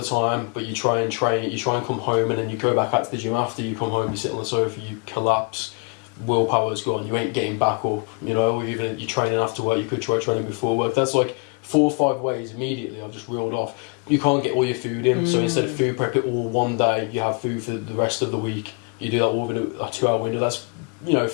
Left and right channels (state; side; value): quieter; right; 36.0 dB